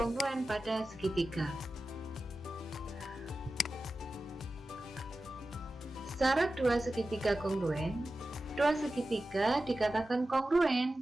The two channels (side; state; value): both; normal; correlation 0.94